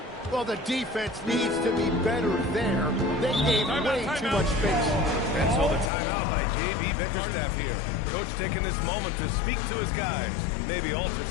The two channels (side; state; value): right; drops out; at 5.9 s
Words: Well, the defense needs to be better there. They gave way too much space. And so the timeout by J.B. Bickerstaff here. Coach taking this moment to speak to his guys. Maybe alter